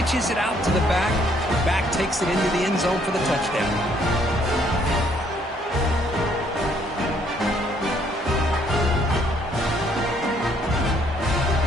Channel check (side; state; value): both; normal; correlation 0.66